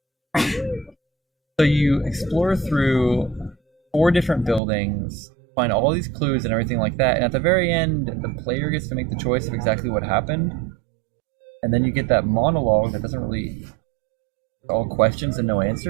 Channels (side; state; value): left; drops out; at 4.6 s